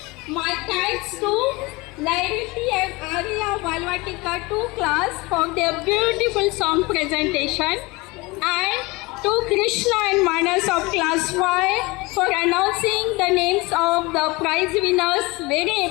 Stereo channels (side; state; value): right; quieter; 23.8 dB